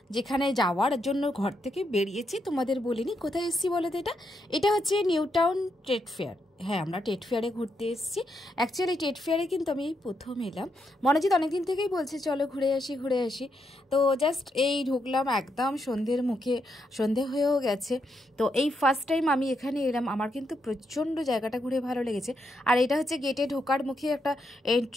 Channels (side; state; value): both; normal; correlation 0.80